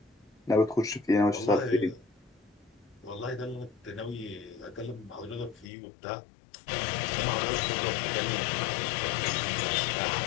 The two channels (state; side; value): drops out; right; at 5.7 s